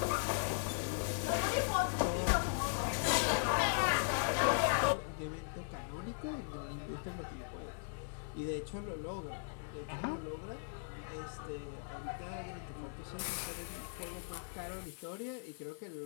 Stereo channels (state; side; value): silent; right; digital silence